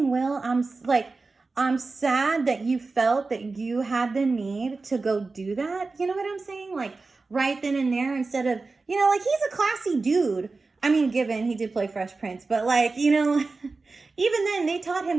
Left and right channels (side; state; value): left; quieter; 3.9 dB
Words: Will, I'm sad that you felt that you had the need to go do that. You know what I'm saying? Like, right then and there, instead of, you know, like, he's a classy dude. I mean, given he did play Fresh Prince, but like, you know, even then they taught